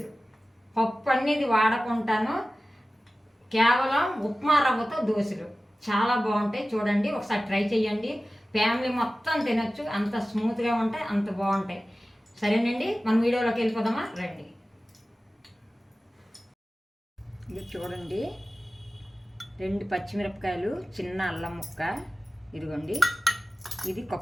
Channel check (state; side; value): normal; both; correlation 0.96